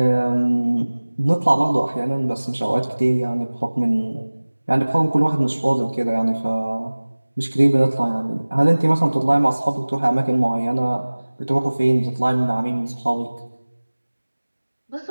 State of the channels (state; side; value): inverted; both; correlation -1.00